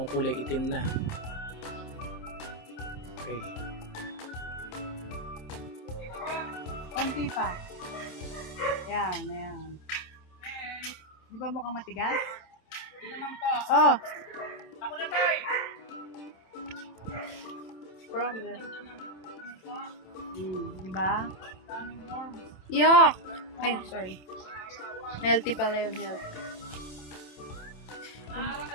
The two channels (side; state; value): right; late; 27 ms